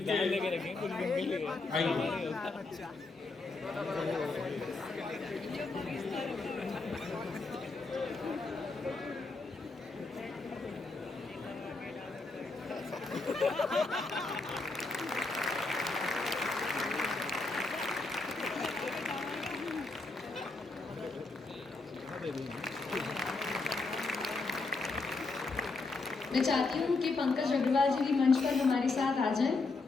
लेके रखेंगे कुछ दिन के लिए। मैं चाहती हूँ कि पंकज अग्रवाल जी भी मंच पर हमारे साथ आ जाएं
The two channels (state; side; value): quieter; right; 3.6 dB